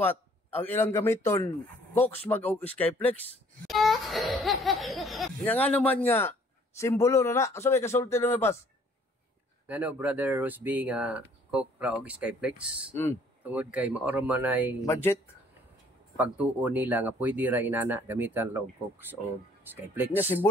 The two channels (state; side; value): normal; both; correlation 0.59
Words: ang ilang gamiton Cox mag og Skyflex. Nga naman nga simbolo na sabi kasulti na pas. Ngano brother Rosby nga Coke ra og Skyflex. Tungod kay maoro man ay Budget pagtuo nila nga pwede ra inana gamitan ra og Coke o Skyflex. nya